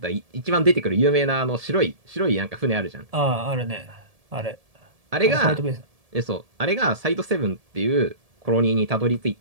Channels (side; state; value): left; late; 1.7 ms